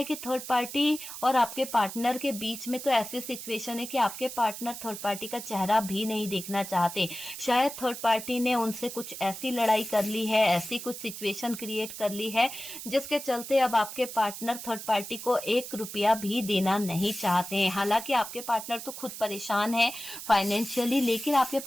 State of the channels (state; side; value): noise; right; hiss, 10 dB below the sound